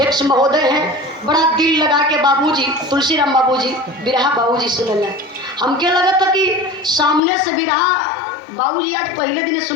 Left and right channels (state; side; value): drops out; right; at 7.2 s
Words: महोदय हैं। बड़ा दिल लगा के बाबूजी तुलसीराम बाबूजी बिरहा बाबूजी सुनल। हमके लगा था कि सामने से बिरहा बाबूजी आज पहले दिन